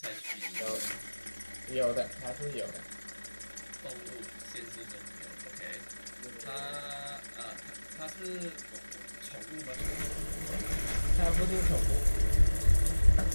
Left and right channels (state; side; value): inverted; both; correlation -1.00